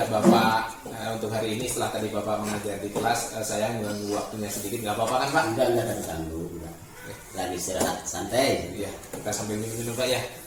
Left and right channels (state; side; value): identical; both; correlation 1.00